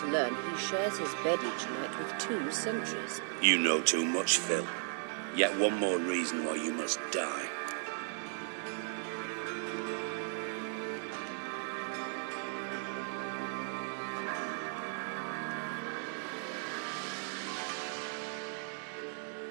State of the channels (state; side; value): silent; left; 54 dB below the other